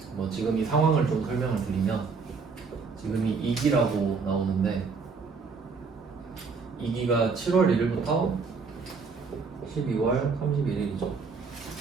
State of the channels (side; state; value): left; quieter; 4.9 dB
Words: 뭐 지금 이 상황을 좀 설명을 드리면, 지금이 2기라고 나오는데 2기가 7월 1일부터 12월 31일이죠.